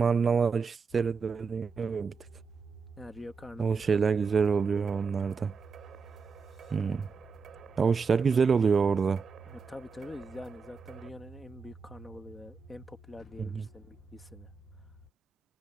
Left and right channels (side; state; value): left; quieter; 5.3 dB